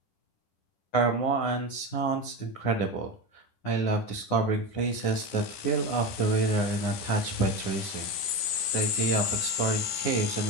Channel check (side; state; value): right; late; 10 ms